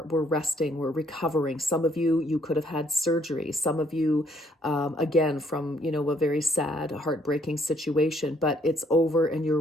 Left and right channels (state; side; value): normal; both; correlation 0.67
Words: we're resting, we're recovering. Some of you, you could have had surgery. Some of you, again, from, a very sad, heartbreaking situation, but it's over and